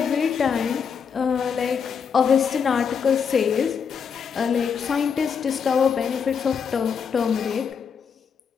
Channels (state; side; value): quieter; right; 6.6 dB